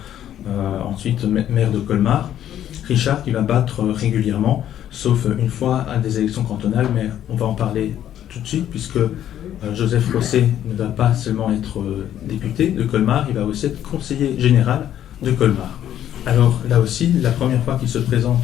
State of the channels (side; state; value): right; quieter; 11.1 dB